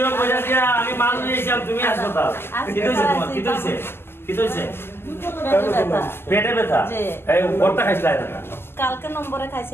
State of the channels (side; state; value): right; late; 0.11 ms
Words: কইরা দিয়া আমি মাল নিয়েছিলাম তুমি হাসপাতাল কি হইছে তোমার কি হইছে পেটে ব্যথা এই ওরটা খাইছিলা না কালকে নম্বরে